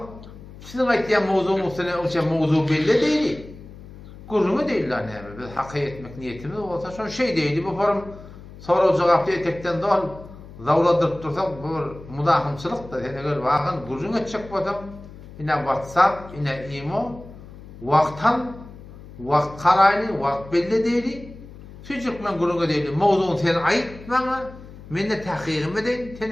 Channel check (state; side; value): noise; left; hum, 17 dB below the sound